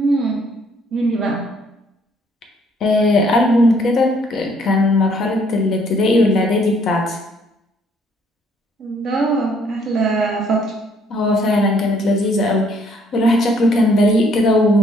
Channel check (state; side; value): normal; both; correlation 0.65